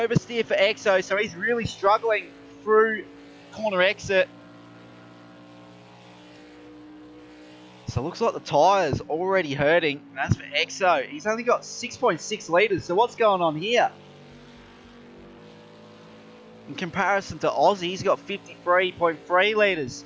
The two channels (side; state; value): both; identical; correlation 1.00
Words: for Exo, so he's really struggling through corner exit. So it looks like the tyres already hurting. And as for Exo, he's only got 6.6 litres. So what's going on here? In comparison to Aussie, he's got 53.3 litres.